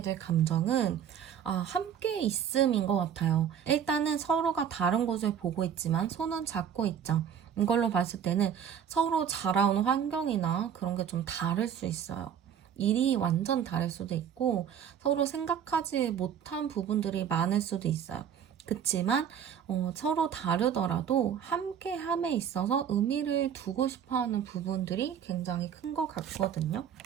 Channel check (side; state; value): left; quieter; 8.5 dB